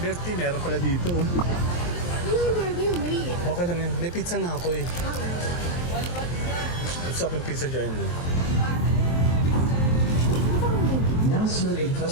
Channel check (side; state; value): right; late; 23 ms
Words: Bertie, meron pala dito. Oh. talaga yung maliit. Okay lang yan. May pizza na ako eh. Gusto ko yung pizza dyan eh. Now serving